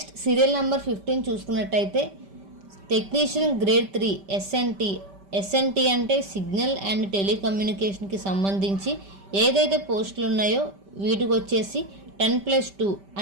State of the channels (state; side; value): late; left; 5.1 ms